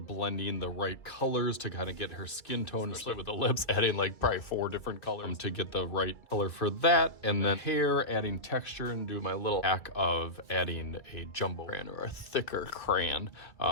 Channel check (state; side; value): late; right; 2.3 ms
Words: the right colors to kind of get her skin tone, especially with the lips, adding like probably 4 different colors to get the right color for that. And then hair, adding texture, and do my little hack of adding a jumbo crayon or a thicker crayon